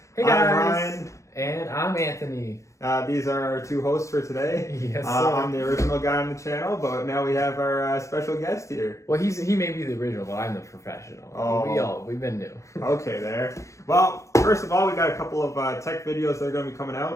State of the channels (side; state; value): right; late; 0.15 ms